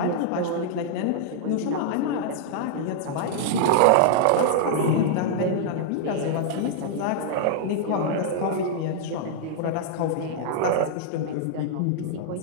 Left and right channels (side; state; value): both; different; correlation -0.01